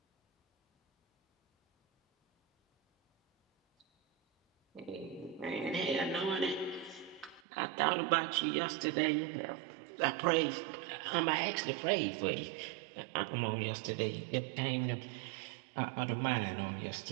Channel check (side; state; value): left; drops out; at 7.4 s